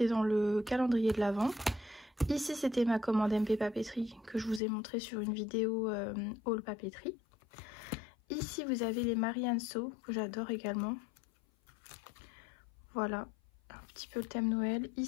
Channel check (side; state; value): right; drops out; at 4.6 s